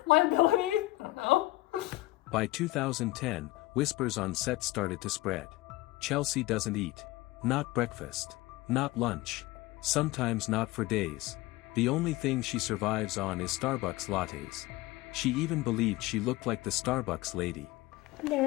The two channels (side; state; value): right; quieter; 19.3 dB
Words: Liability? I don't know. By 2010, whispers on set started to spread. Chelsea doesn't eat. Not breakfast. Not lunch. Sometimes not for days. The only thing she survives on is Starbucks lattes. She even believed she looked like the Starbucks lady.